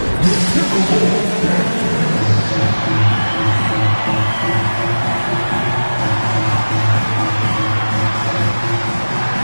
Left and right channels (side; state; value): both; inverted; correlation -1.00